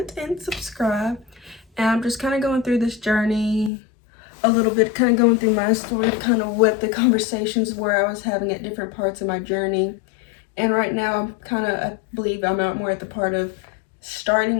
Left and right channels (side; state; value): right; drops out; at 3.7 s